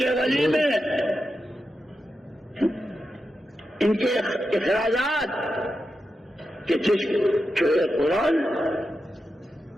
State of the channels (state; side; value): normal; both; correlation 0.89